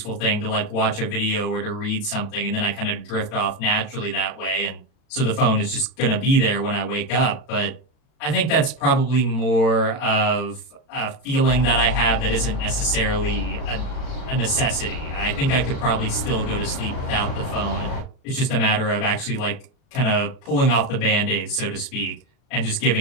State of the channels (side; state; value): right; late; 40 ms